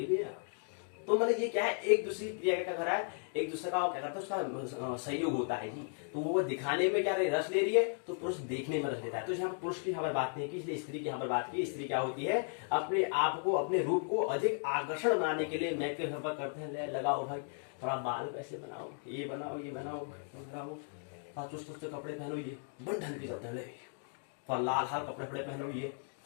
गया। तो मतलब ये क्या है? एक दूसरी क्रिया क्या कर रहा है? एक दूसरे का क्या करता है? उसका सहयोग होता है जी। तो वो दिखाने में क्या रस ले रही है, तो पुरुष देखने में रस लेता है। तो यहाँ पर पुरुष की यहाँ पर बात नहीं की, इसलिए स्त्री की यहाँ पर बात की। स्त्री क्या होती है? अपने आप को, अपने रूप को अधिक आकर्षण बनाने के लिए मेकअप यहाँ पर करते हैं, लगाओ भाई, थोड़ा बाल कैसे बनाओ, ये बनाओ, ये बनाओ, थोड़ा चुस्त कपड़े पहनो, ये बन ढंग के चलते हैं, थोड़ा लाल हाल कपड़े पहनो, ये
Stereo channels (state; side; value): silent; right; 54 dB below the other